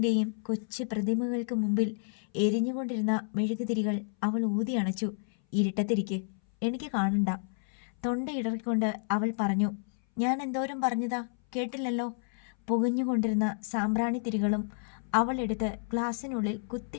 കൊച്ചു പ്രതിമകൾക്ക് മുമ്പിൽ എരിഞ്ഞുകൊണ്ടിരുന്ന മെഴുകുതിരികൾ അവൾ ഊതി അണച്ചു. ഇരുട്ടത്തിരിക്ക്, എനിക്ക് കാണണ്ട. തൊണ്ടയിടറിക്കൊണ്ട് അവൾ പറഞ്ഞു. ഞാൻ എന്തോരം പറഞ്ഞതാ, കേട്ടില്ലല്ലോ? പുകഞ്ഞുകൊണ്ടിരുന്ന സാമ്പ്രാണിത്തിരികളും അവൾ എടുത്ത് ഗ്ലാസ്സിനുള്ളിൽ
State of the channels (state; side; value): silent; right; 58 dB below the other